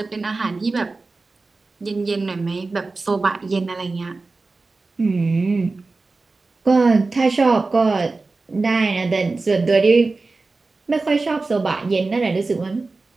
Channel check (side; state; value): left; quieter; 3.7 dB